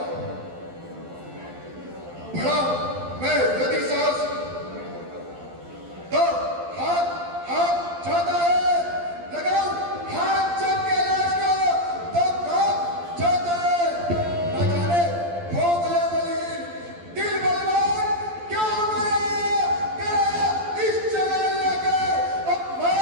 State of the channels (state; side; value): late; left; 12 ms